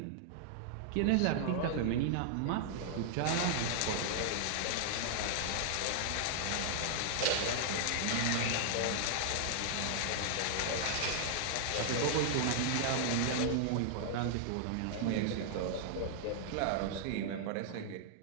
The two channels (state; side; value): different; both; correlation 0.00